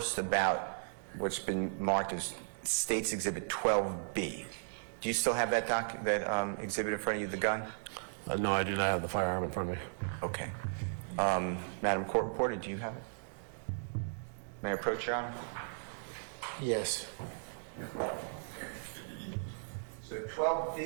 about what's been marked as State's Exhibit 12B. Do you still have that exhibit in front of you, the gun? No, I do not have the firearm in front of me. Okay. Madam Court Reporter, do you have it? May I approach, Your Honor? Yes. So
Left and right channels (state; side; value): silent; left; digital silence